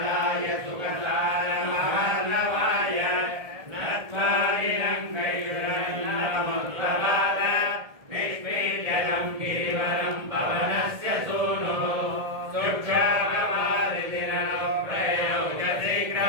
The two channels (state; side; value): late; left; 1.7 ms